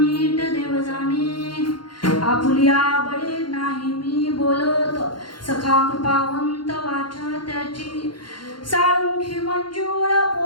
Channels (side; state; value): right; late; 0.72 ms